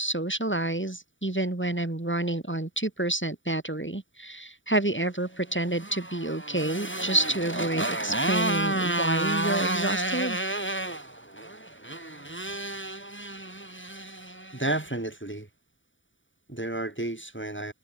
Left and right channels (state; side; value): late; right; 0.56 ms